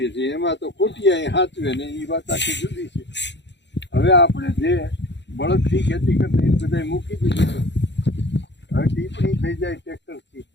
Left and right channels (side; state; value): right; late; 0.52 ms